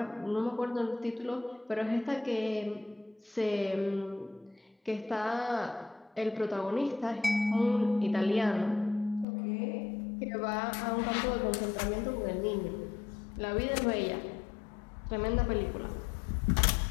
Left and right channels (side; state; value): right; drops out; at 9.2 s